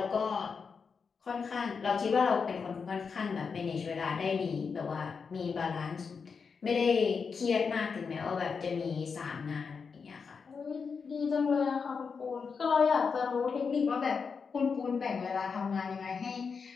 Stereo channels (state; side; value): quieter; right; 5.6 dB